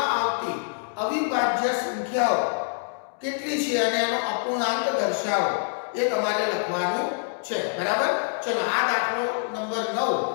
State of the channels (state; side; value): silent; right; digital silence